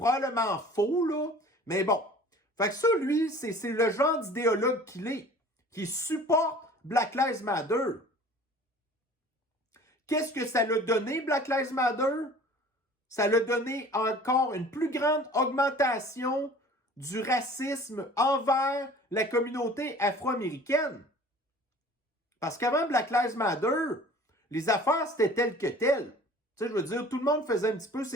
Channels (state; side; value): normal; both; correlation 0.46